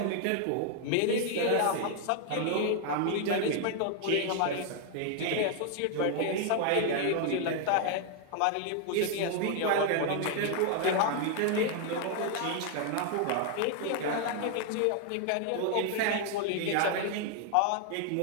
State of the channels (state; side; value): different; both; correlation 0.00